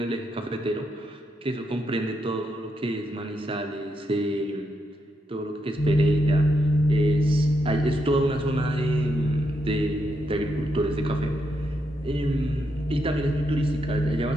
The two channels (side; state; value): both; normal; correlation 0.81